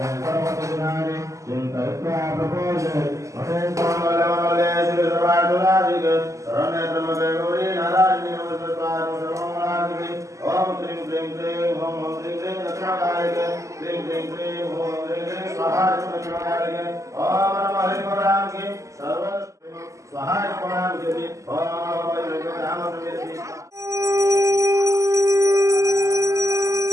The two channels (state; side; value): late; left; 0.15 ms